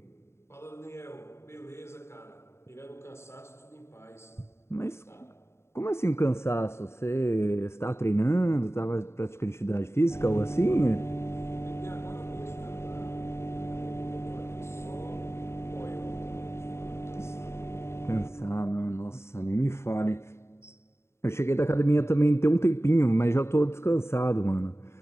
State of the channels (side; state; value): right; late; 0.13 ms